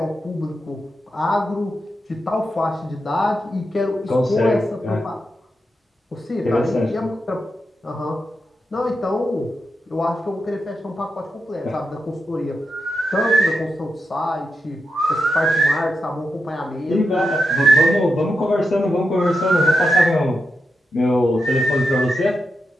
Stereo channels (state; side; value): normal; both; correlation 0.87